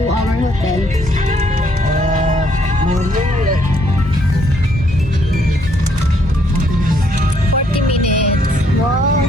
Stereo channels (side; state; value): both; normal; correlation 0.69